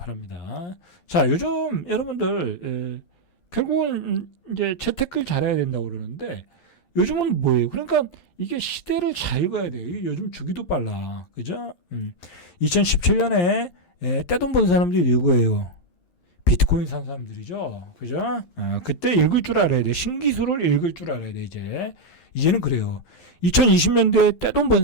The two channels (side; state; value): right; late; 11 ms